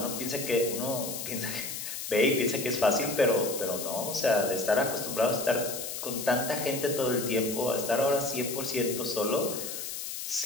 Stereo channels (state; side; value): noise; left; hiss, 6 dB below the sound